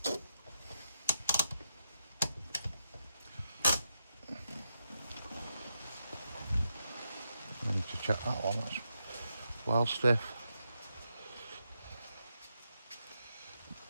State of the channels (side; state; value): both; inverted; correlation -0.83